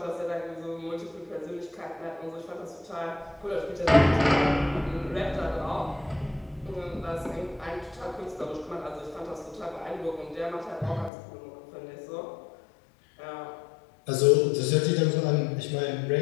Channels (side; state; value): right; drops out; at 11.1 s